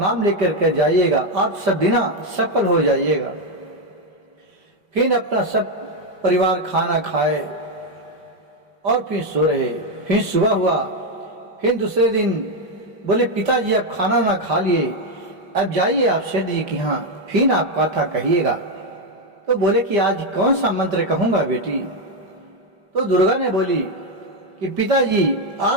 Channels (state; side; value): late; left; 5.1 ms